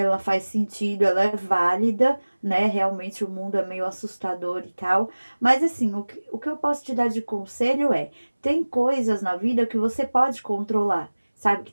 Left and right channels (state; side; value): inverted; both; correlation -1.00